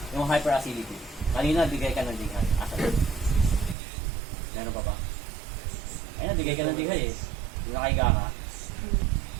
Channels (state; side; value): drops out; left; at 3.8 s